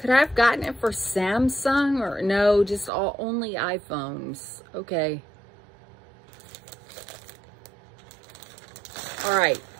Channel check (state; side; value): drops out; left; at 2.9 s